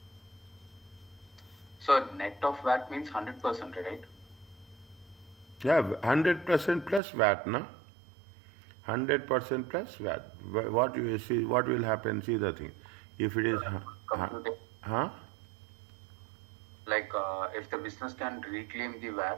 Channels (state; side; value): drops out; left; at 7.0 s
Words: So net of VAT means 100%, right? Yeah, 100% plus VAT, na? 100% plus VAT. What you see, what will happen? See the thing. If it is, Computing, huh? like if the business can reclaim the